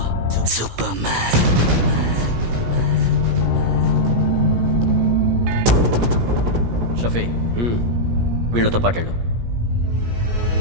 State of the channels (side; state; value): left; late; 17 ms